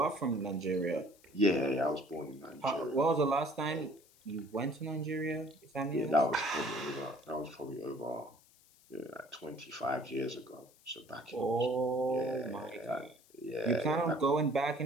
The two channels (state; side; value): noise; left; hiss, 28 dB below the sound